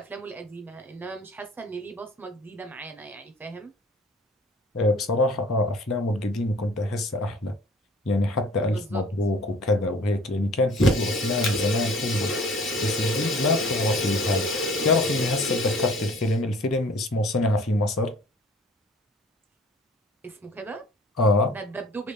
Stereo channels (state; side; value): normal; both; correlation 0.50